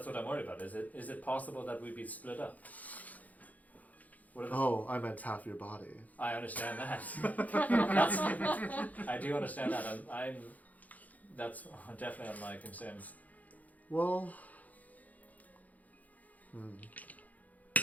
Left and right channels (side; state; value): right; late; 0.077 ms